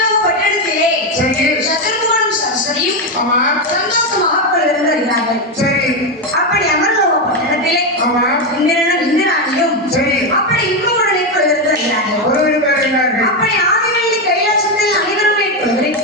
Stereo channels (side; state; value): both; normal; correlation 0.09